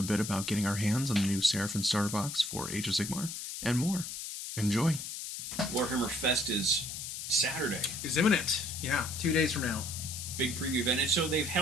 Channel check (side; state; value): left; noise; hiss, 7 dB below the sound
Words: bit about getting our hands on the new Seraphon starter box for Age of Sigmar, and more. Enjoy. WarhammerFest is Saturday. Is imminent. Yeah, 2 days from now. Big preview event. And so they've